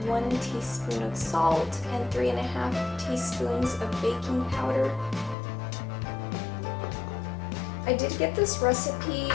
1 teaspoon of salt and 3.5 teaspoons of baking powder. I did get this recipe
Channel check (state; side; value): drops out; right; at 5.4 s